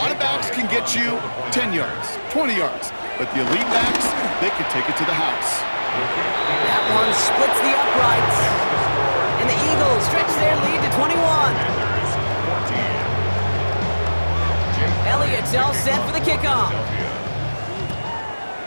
of backs can get you 10 yards, 20 yards, but the elite backs, they can take it to the house. That one splits the uprights. And the Eagles stretch their lead to 21. Elliott's all set for the kickoff.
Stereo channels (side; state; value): both; inverted; correlation -1.00